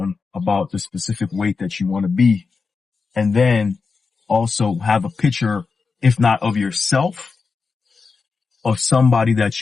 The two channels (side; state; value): right; quieter; 4.8 dB